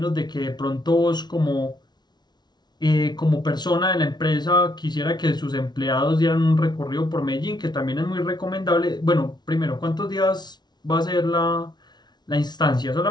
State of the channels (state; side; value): late; right; 0.20 ms